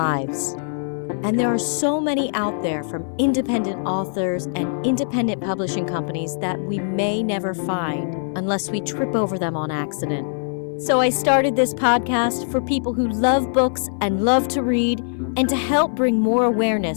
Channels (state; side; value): silent; right; 59 dB below the other